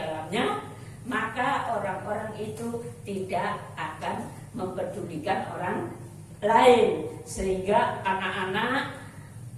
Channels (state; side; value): identical; both; correlation 1.00